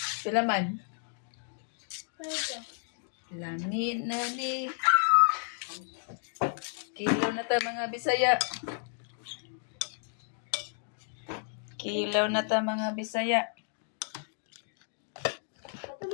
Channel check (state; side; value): silent; right; 56 dB below the other